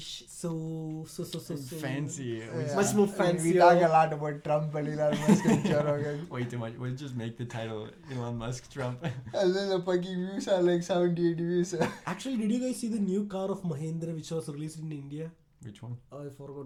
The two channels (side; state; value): both; identical; correlation 1.00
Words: so Fancy. Yeah. much more I mean, fancy. we talk a lot about Trump and Elon Musk and Joe Rogan. Way too much. We'll just make the title Elon Musk Trump. And then the fucking views are like 78 views. Actually, did you guys see the new car of Mahindra which was released in India? Which one? I